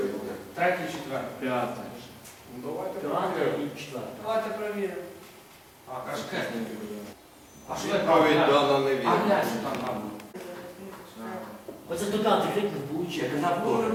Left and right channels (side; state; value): both; identical; correlation 1.00